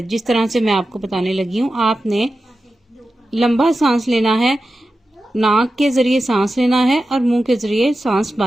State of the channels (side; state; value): both; normal; correlation 0.92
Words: जिस तरह से मैं आपको बताने लगी हूँ। आपने लंबा सांस लेना है, नाक के जरिए सांस लेना है और मुंह के जरिए सांस